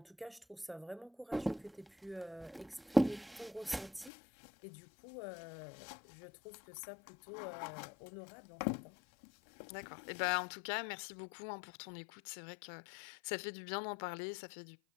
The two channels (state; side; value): drops out; right; at 4.1 s